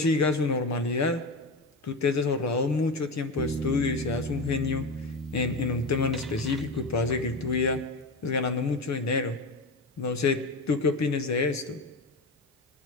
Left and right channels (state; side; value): quieter; right; 3.0 dB